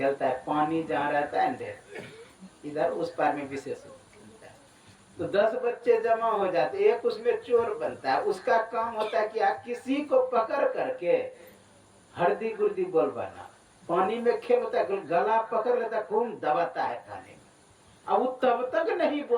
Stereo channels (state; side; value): identical; both; correlation 1.00